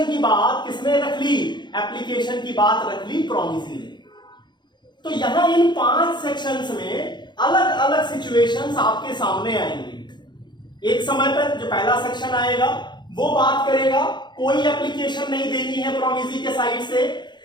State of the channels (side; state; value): right; late; 0.21 ms